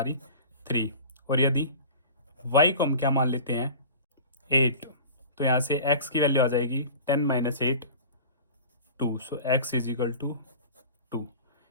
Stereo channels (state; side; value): inverted; both; correlation -0.38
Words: 3, और यदि y को हम क्या मान लेते हैं 8, तो यहाँ से x की वैल्यू आ जाएगी 10 minus 8 2। So x is equal to 2।